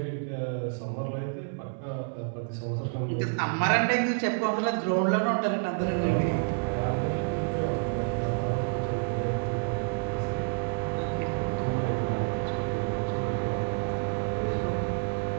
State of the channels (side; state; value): left; silent; 59 dB below the other